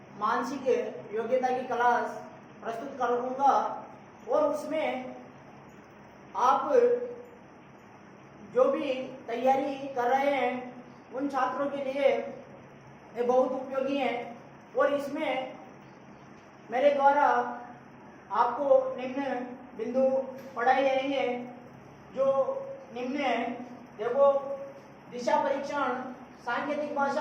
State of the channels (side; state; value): both; identical; correlation 1.00